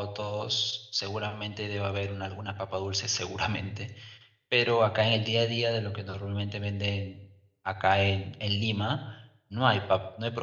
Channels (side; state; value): both; identical; correlation 1.00